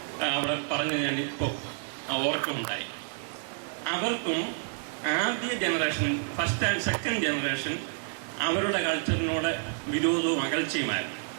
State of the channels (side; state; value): left; silent; 58 dB below the other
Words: അവിടെ പറഞ്ഞ് ഞാൻ ഇപ്പോൾ ഓർക്കുന്നുണ്ടായി. അവർക്കും ആദ്യ generation, first and second generation അവരുടെ കൾച്ചറിനോട് വിരോധവും അകൽച്ചയുമായിരുന്നു.